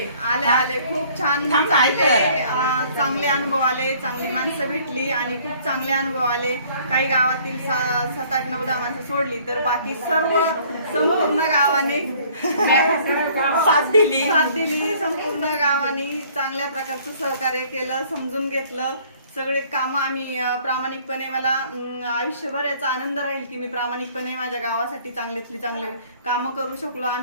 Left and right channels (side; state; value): both; inverted; correlation -0.57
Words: खूप छान थांब ना, ऐक चांगले चांगले अनुभव आले. चांगली माणसं भेटली आणि खूप चांगले अनुभव आले. काही गावातील 7, 8, 9, 10 माणसं सोडली तर बाकी सर्व संपूर्ण गावाने साथ दिली. संपूर्ण गावाने चांगल्या प्रकारचं सहकार्य केलं, समजून घेतलं. सगळे कामं आम्ही प्रामाणिकपणे मला आयुष्यभर याचा आनंद राहील की मी प्रामाणिकपणे माझ्या गावासाठी चांगल्यातली चांगले कामं करू शकलो.